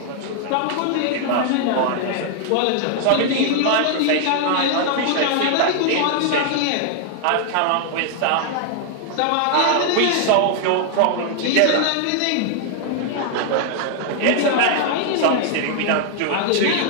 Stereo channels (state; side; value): different; both; correlation 0.00